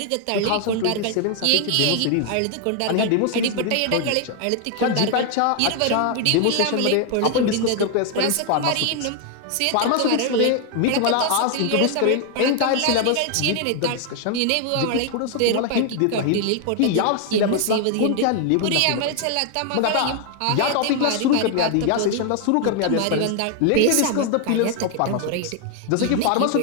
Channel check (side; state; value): both; different; correlation 0.00